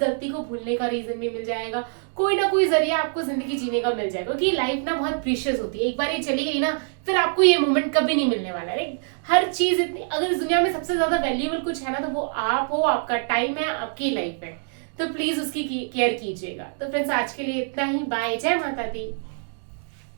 को भूलने का रीजन भी मिल जाएगा, कोई ना कोई जरिया आपको जिंदगी जीने का मिल जाएगा। क्योंकि लाइफ ना बहुत प्रीशियस होती है, एक बार ये चली गई ना फिर आपको ये मोमेंट कभी नहीं मिलने वाला है। हर चीज इतनी, अगर इस दुनिया में सबसे ज्यादा वैल्यूएबल कुछ है ना तो वो आप हो, आपका टाइम है, आपकी लाइफ है। तो प्लीज उसकी केयर कीजिएगा। तो फ्रेंड्स, आज के लिए इतना ही। बाय, जय माता दी।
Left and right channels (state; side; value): silent; left; 62 dB below the other